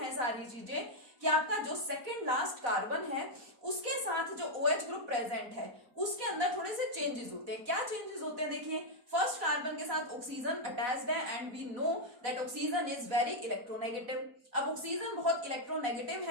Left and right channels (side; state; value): left; late; 4.1 ms